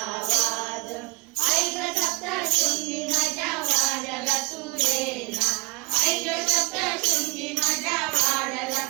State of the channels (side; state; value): left; quieter; 27.1 dB